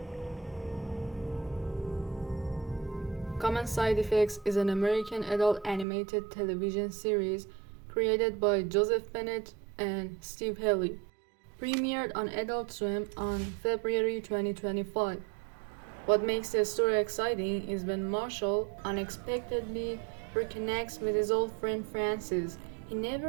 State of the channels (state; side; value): drops out; left; at 5.9 s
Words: Common Side Effects is an American adult animated television series created by Joseph Bennett and Steve Haley. Premiered on Adult Swim on February 2025. What makes the story exciting is when Marshall unexpectedly reconnects with his old friend Francis. He